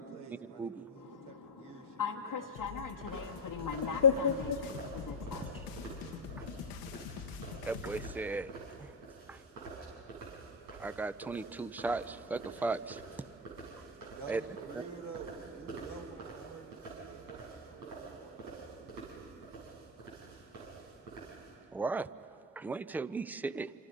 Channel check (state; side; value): normal; both; correlation 0.10